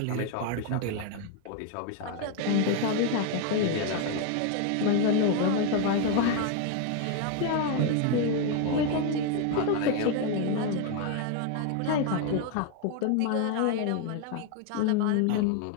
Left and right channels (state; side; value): different; both; correlation 0.01